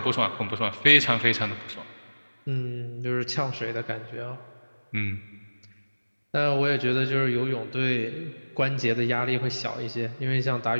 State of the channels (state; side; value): inverted; both; correlation -1.00